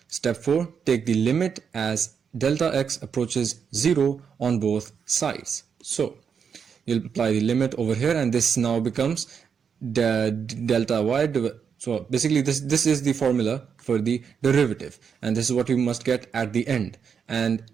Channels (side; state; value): left; quieter; 6.7 dB